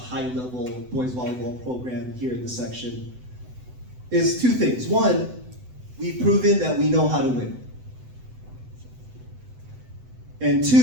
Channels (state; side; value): late; left; 7.9 ms